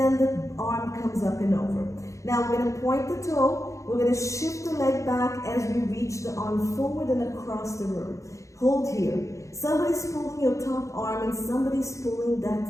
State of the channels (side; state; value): right; late; 0.15 ms